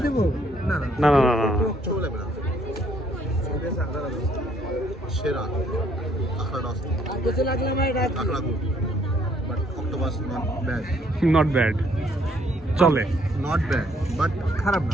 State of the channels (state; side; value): normal; both; correlation 0.66